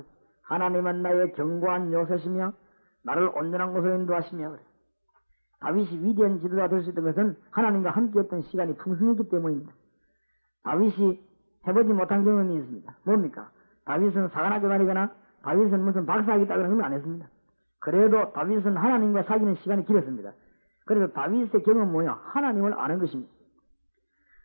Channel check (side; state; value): both; inverted; correlation -1.00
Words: 하나님은 나의 견고한 요새시며 나를 온전한 곳으로 인도하시며 그래. 다윗이 위대한 지도자 될 수 있던 것은 하나님과 함께했던 시간이 풍성했기 때문입니다. 다윗이 해보지 못한 경험이 있습니다. 뭡니까? 다윗은 사관학교 다니거나 다윗은 무슨 박사학위 따거나 그런 건 안 했습니다. 그래도 다윗은 하나님과 사귀는 시간이 길었습니다. 그래서 다윗의 경험은 뭐냐? 하나님을 아는 것입니다.